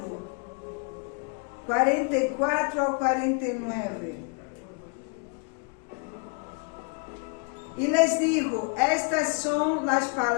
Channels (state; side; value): quieter; right; 34.8 dB